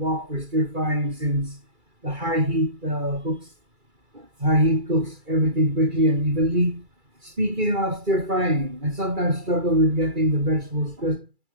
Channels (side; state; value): left; late; 2.3 ms